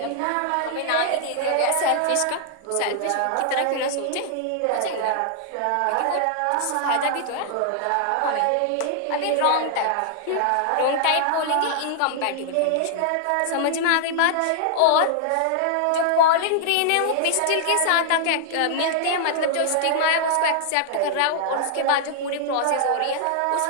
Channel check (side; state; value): both; different; correlation -0.01